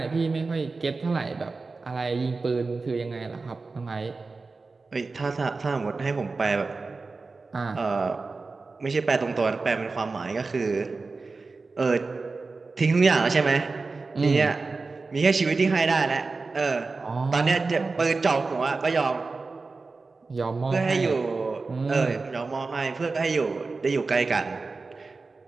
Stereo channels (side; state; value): left; quieter; 3.9 dB